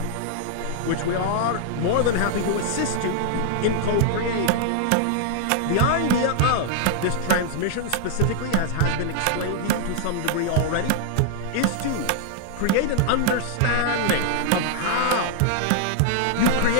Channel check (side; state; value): both; different; correlation -0.01